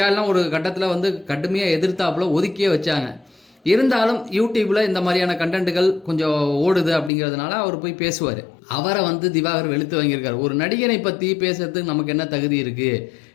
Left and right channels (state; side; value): drops out; right; at 7.1 s